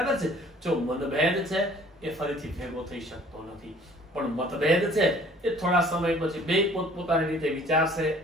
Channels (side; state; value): both; normal; correlation 0.54